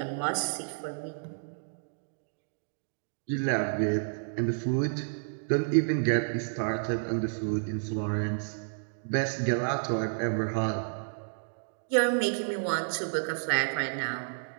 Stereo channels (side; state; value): left; silent; digital silence